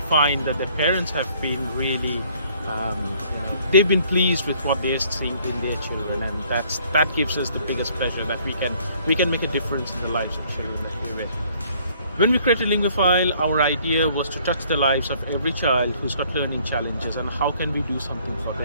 find that the parents have been really they've been pleased with what they're seeing in their children, and that gives us the biggest pleasure that we can make a difference in the lives of children that we're with. When we created Linguaphile, our idea was to touch the lives of every child who's got learning challenges, and how can we do something for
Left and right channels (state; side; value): inverted; both; correlation -0.60